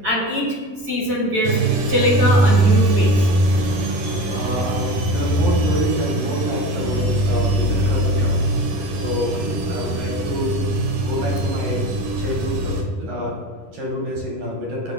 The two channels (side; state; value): left; late; 10 ms